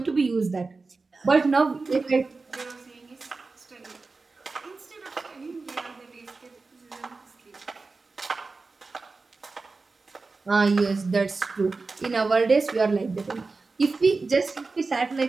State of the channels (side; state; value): left; quieter; 3.9 dB